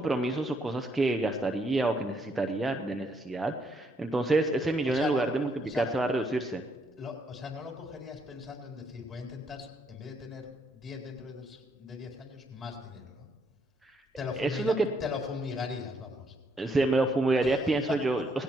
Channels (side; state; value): both; normal; correlation 0.73